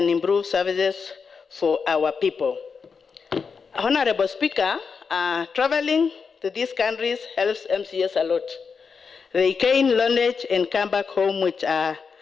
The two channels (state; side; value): quieter; right; 5.6 dB